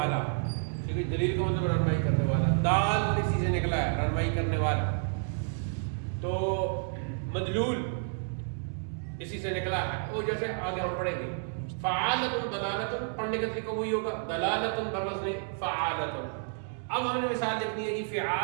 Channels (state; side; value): silent; left; 58 dB below the other